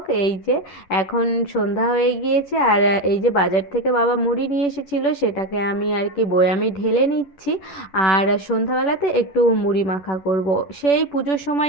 এই যে এখন সন্ধ্যা হয়ে গিয়েছে, আর এই যে বাজার থেকে বাবা মুড়ি নিয়ে এসেছিলো, সেটাকে আমি আর কি বয়ামে ঢেলে নিচ্ছি। আর সন্ধ্যাবেলাতে একটু মুড়ি মাখা করব। সেই পুজোর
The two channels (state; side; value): late; right; 10 ms